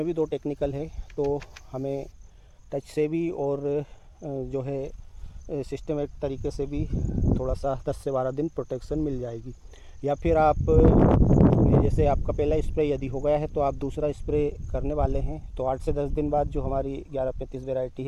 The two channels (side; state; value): both; identical; correlation 1.00